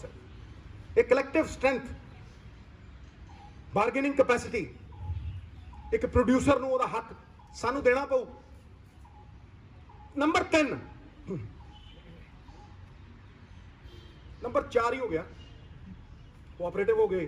ਇਹ ਕਲੈਕਟਿਵ ਸਟਰੈਂਥ, ਬਾਰਗੇਨਿੰਗ ਕੈਪੈਸਿਟੀ, ਇੱਕ ਪ੍ਰੋਡਿਊਸਰ ਨੂੰ ਉਹਦਾ ਹੱਕ ਸਾਨੂੰ ਦੇਣਾ ਪਊ। ਨੰਬਰ 3, ਨੰਬਰ 4 ਹੀ ਹੋ ਗਿਆ, ਕੋਆਪਰੇਟਿਵ ਹੋ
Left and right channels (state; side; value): identical; both; correlation 1.00